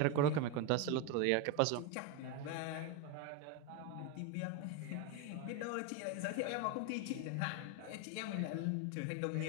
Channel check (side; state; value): both; different; correlation 0.02